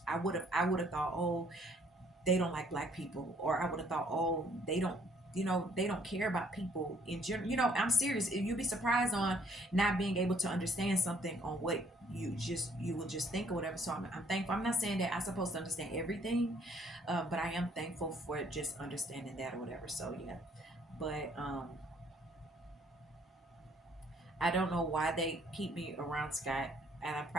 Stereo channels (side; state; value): both; normal; correlation 0.63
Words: would have thought, oh, they don't like black people, or I would have thought, oh, they don't care about people in general. I'm serious. You'd be surprised on not being able to understand something on what you will just think or whatever. So I'm thankful. I'm not saying that I'm supposed to understand everything, but I am thankful for just understanding that or whatever. So yeah, but I don't know why they keep me around Scott, and I'm